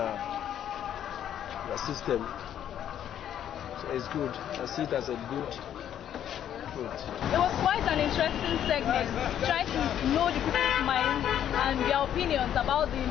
system. So it's good. I see it as a good food. It was quite an interesting segment, trying to know the people's minds and their opinions about the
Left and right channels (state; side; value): quieter; right; 10.3 dB